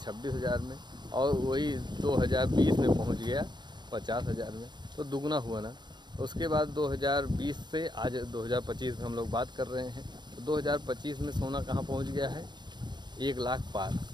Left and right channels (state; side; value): late; left; 0.21 ms